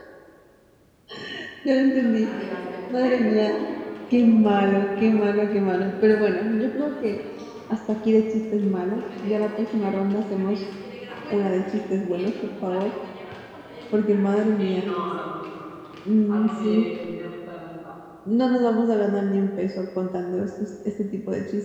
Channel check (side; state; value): both; identical; correlation 1.00